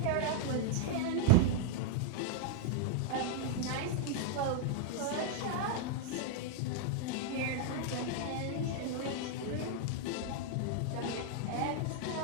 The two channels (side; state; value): both; different; correlation 0.00